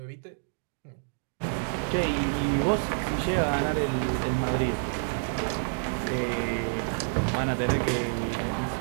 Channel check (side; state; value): left; silent; digital silence